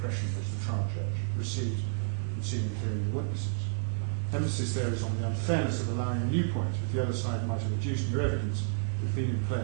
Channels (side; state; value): left; silent; digital silence